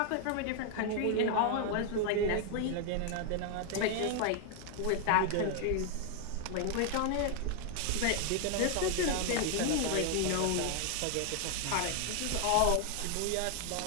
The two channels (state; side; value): different; both; correlation 0.00